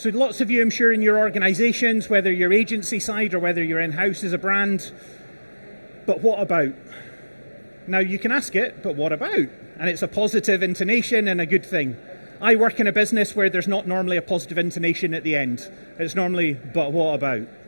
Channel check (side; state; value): both; inverted; correlation -1.00